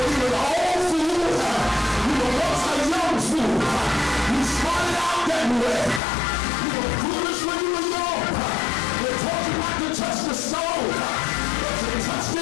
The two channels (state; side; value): drops out; right; at 6.0 s